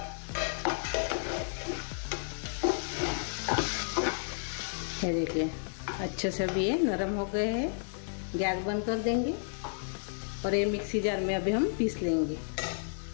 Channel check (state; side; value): silent; right; 56 dB below the other